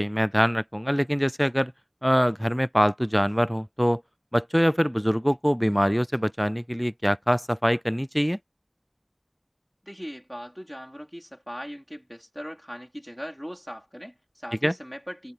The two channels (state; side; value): identical; both; correlation 1.00